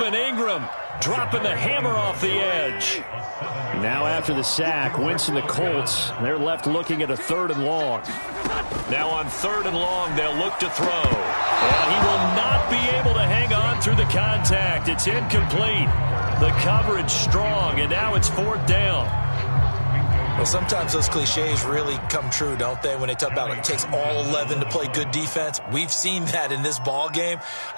Ingram dropping the hammer off the edge. Now after the sack, Wentz and the Colts, they're left looking at a 3rd and long. Now on 3rd and long, they'll look to throw. And he will not be able to hang on through the contact. It's incomplete. The coverage strong, and now it's 4th down. Well, sometimes those cliches really come true, don't they, when they talk about it takes all 11 to play good defense. We've seen that in this ball game.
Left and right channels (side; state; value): both; inverted; correlation -1.00